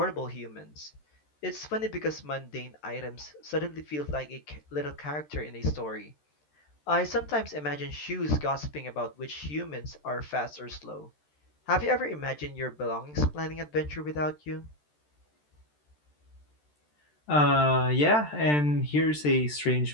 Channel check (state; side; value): late; right; 13 ms